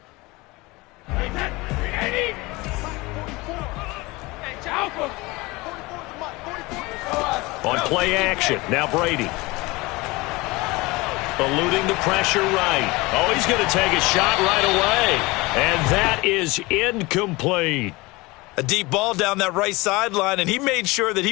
On play action, now Brady. Eluding the pressure right. Oh, he's going to take a shot right away. And that is incomplete. A deep ball down that right sideline, and he made sure that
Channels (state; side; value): quieter; right; 22.8 dB